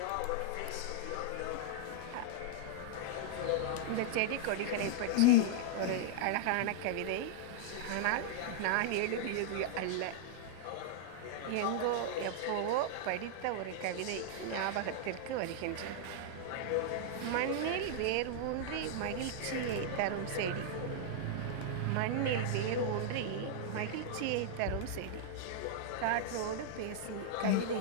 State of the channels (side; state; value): both; different; correlation -0.01